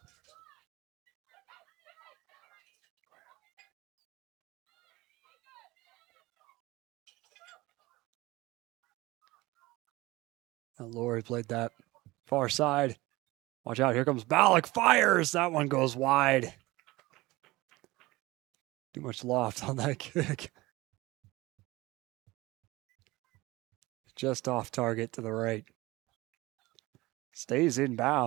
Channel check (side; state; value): left; quieter; 20.5 dB